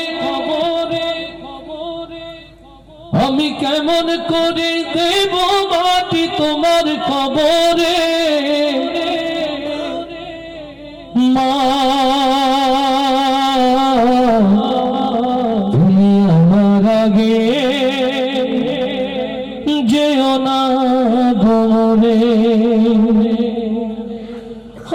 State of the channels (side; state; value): both; identical; correlation 1.00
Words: খবরে খবরে, আমি কেমন করে দেব মাটি তোমার খবরে মা, তুমি আমার আগে যেও না ঘরে।